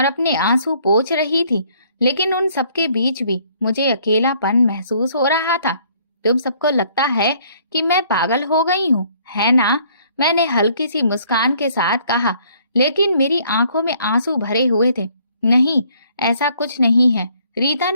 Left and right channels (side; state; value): both; inverted; correlation -0.62